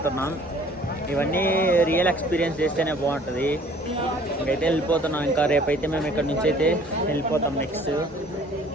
ఇవన్నీ రియల్ ఎక్స్పీరియన్స్ చేస్తేనే బాగుంటుంది. ఇంకైతే వెళ్ళిపోతున్నాం. ఇంకా రేపైతే మేము ఇక్కడ నుంచి అయితే వెళ్ళిపోతాం. నెక్స్ట్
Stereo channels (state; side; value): normal; both; correlation 0.54